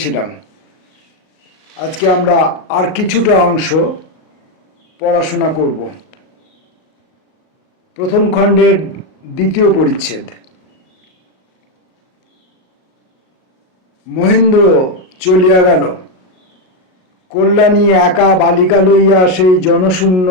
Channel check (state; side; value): late; right; 38 ms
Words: আজকে আমরা আর কিছুটা অংশ পড়াশোনা করব। প্রথম খণ্ডের দ্বিতীয় পরিচ্ছেদ। মহেন্দ্র চলিয়া গেল। কল্যাণী একা বালিকা লইয়া সেই জনশূন্য